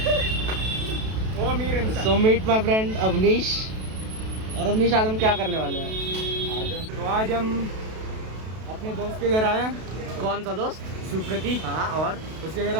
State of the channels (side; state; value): left; late; 32 ms